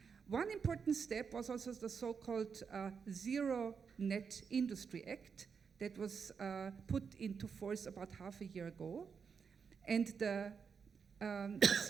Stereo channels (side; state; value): left; quieter; 6.1 dB